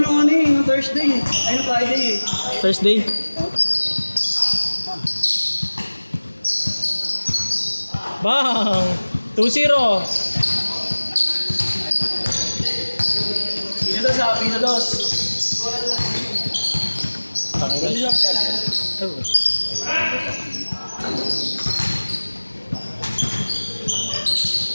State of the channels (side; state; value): both; inverted; correlation -1.00